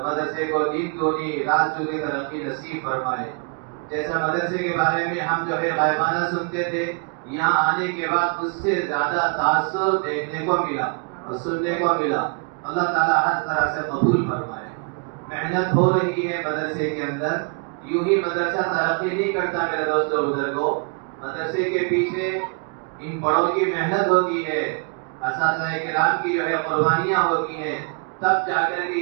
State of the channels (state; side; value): quieter; left; 36.5 dB